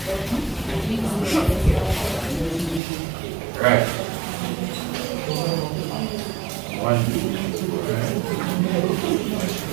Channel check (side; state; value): left; drops out; at 2.8 s